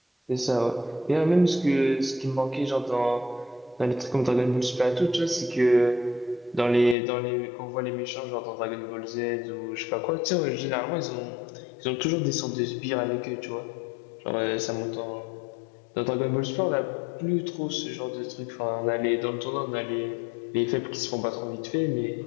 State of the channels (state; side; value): drops out; right; at 7.0 s